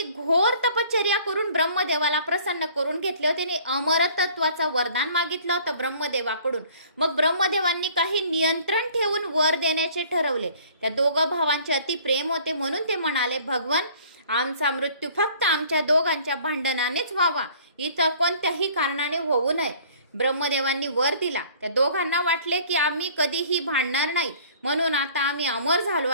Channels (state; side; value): inverted; both; correlation -0.53